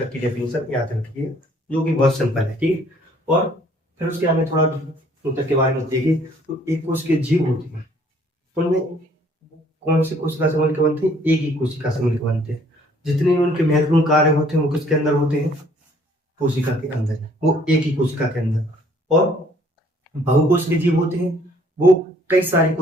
की डेफिनेशन याद रखिए जो कि बहुत सिंपल है, ठीक है। और फिर उसके आगे थोड़ा ऊतक के बारे में देखिए, तो एक कोश के जीव होती है, उनमें कौन सी कोशिका से मिलकर बनते हैं, एक ही कोशिका से मिलकर बनते हैं। जितने भी उनके महत्वपूर्ण कार्य होते हैं वो किसके अंदर होते हैं, कोशिका के अंदर, वो एक ही कोशिका के अंदर। और बहुकोशिकीय जीव होते हैं वो कई सारी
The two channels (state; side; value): normal; both; correlation 0.60